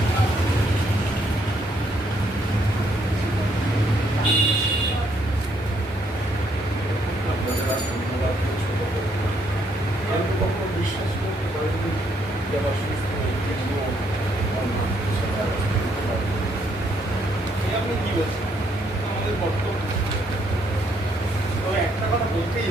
বিশ্বাস করতে পারেনি আপনি কি বলছেন? আমাদের কর্তব্য। তবে একটা কথা বলতেই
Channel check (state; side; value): normal; both; correlation 0.72